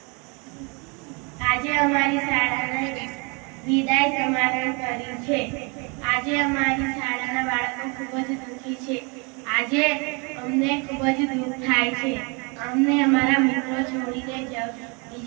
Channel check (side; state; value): left; quieter; 31.7 dB